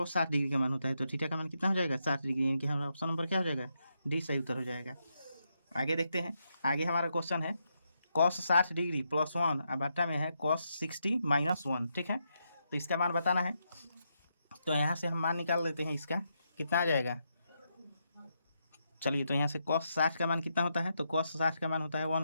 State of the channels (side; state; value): both; inverted; correlation -0.82